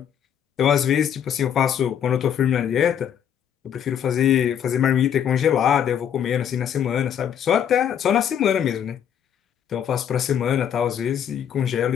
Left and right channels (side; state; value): right; quieter; 8.9 dB